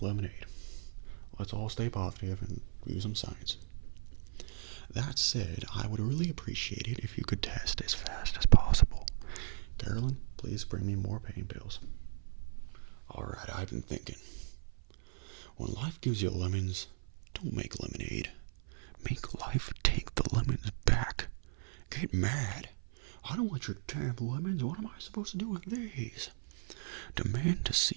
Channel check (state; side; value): silent; left; 54 dB below the other